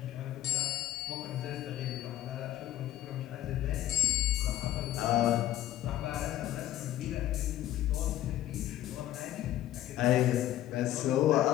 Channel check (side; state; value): right; quieter; 13.4 dB